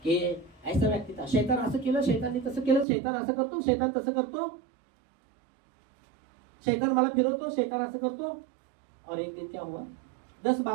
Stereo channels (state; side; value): drops out; left; at 2.9 s